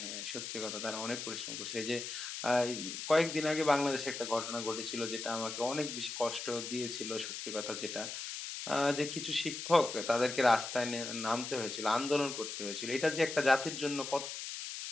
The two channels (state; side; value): noise; left; hiss, 6 dB below the sound